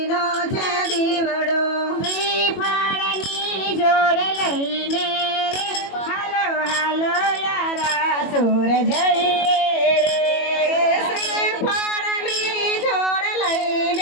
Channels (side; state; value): right; late; 21 ms